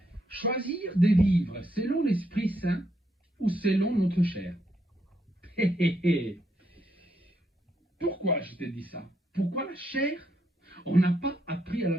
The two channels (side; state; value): both; normal; correlation 0.77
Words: Choisir de vivre selon l'Esprit Saint ou selon notre chair. Pourquoi je te dis ça? Pourquoi la chair? On n'a pas appris à